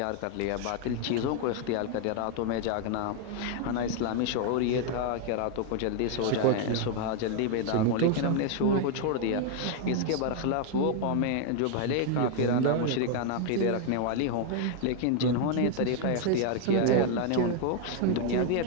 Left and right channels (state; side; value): different; both; correlation 0.00